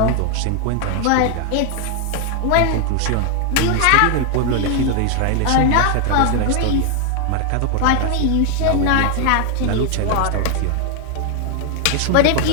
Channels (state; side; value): different; both; correlation 0.00